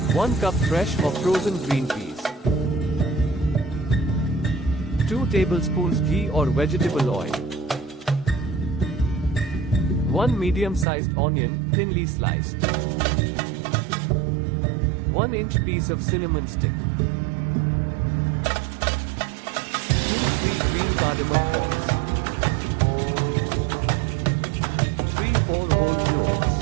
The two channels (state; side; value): drops out; left; at 10.9 s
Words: 1 cup fresh or frozen green peas, 2 tablespoons ghee or vegetable oil, 1 medium-sized onion, thinly sliced, 1-inch piece of cinnamon stick, 2-3 green cardamom pods, 3-4 whole cloves,